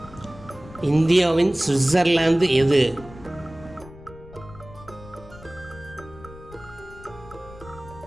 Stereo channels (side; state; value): left; noise; rumble, 19 dB below the sound